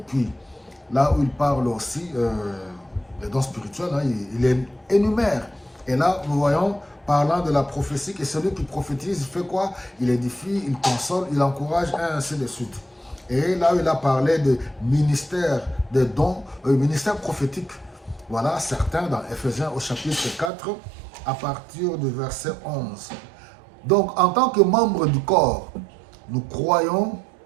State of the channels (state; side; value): drops out; left; at 20.5 s